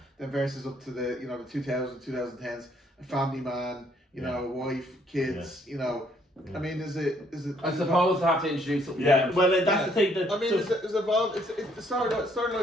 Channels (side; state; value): both; normal; correlation 0.66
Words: then versus up to the the 2010s, a family man. Wife, kids, I mean, is it? I suppose they have to introduce something. Yeah, well, that's the thing. I mean, it's evolved. The